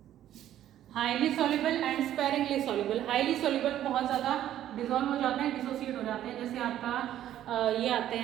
Highly soluble and sparingly soluble. Highly soluble बहुत ज़्यादा डिसॉल्व हो जाते हैं, डिसोसिएट हो जाते हैं, जैसे आपका ये आते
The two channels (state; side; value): quieter; left; 11.9 dB